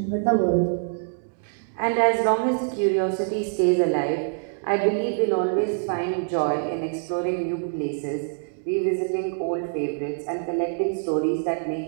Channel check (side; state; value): left; silent; 62 dB below the other